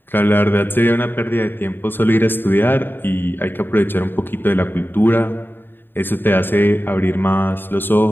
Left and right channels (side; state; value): right; late; 0.097 ms